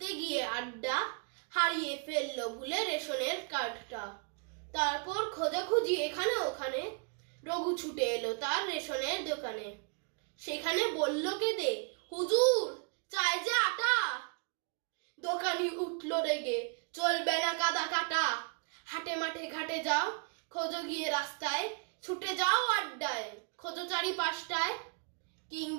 গিয়ে আড্ডা, হারিয়ে ফেললো ভুলে রেশনের কার্ডটা। তারপর খোঁজাখুঁজি এখানে ওখানে, রঘু ছুটে এলো তার রেশনের দোকানে। সেখানে বলল কেঁদে, হুজুর চাই যে আটা। দোকানি উঠলো রেগে, চলবে না কাদা কাটা। হাটে মাঠে ঘাটে যাও, খোঁজো গিয়ে রাস্তায়, ছুটে যাও আড্ডায়, খোঁজো চারিপাশটায়।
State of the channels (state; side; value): quieter; left; 37.7 dB